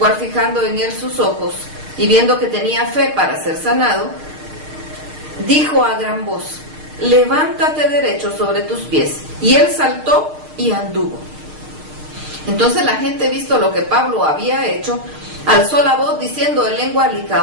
fijando en él sus ojos y viendo que tenía fe para ser sanado, dijo a gran voz: levántate derecho sobre tus pies. Y él saltó y anduvo. Entonces la gente, visto lo que Pablo había hecho, alzó la voz diciendo en lengua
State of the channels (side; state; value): left; late; 6.5 ms